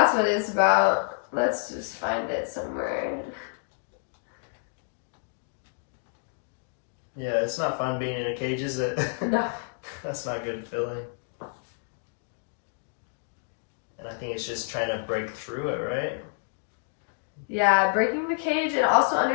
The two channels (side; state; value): right; silent; digital silence